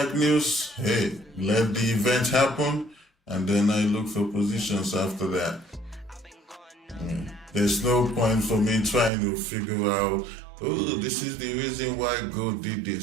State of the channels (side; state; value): left; drops out; at 9.1 s